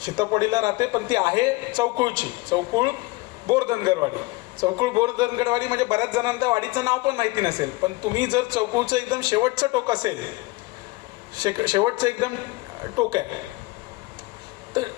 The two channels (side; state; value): right; quieter; 22.1 dB